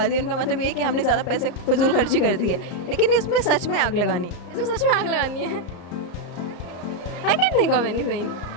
दी। उनका मतलब ये है कि हमने ज़्यादा पैसे फजूल खर्ची कर दी है, लेकिन इसमें सच में आग लगानी है। इसमें सच में आग लगानी है। I can't think of anything।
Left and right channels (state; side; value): late; right; 34 ms